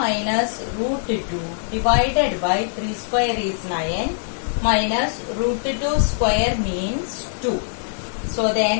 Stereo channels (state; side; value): silent; right; 64 dB below the other